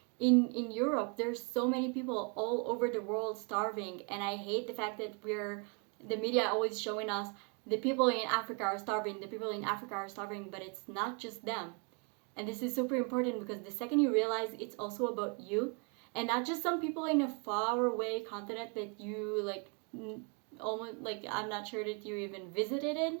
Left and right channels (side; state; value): left; quieter; 35.3 dB